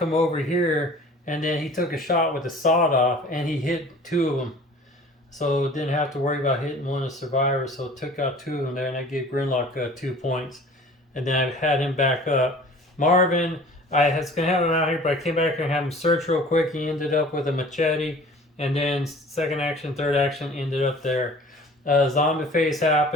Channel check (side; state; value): both; normal; correlation 0.46